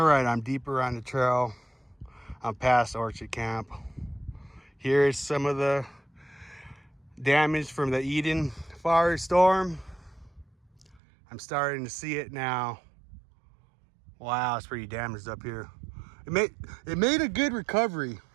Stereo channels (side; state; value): left; drops out; at 11.0 s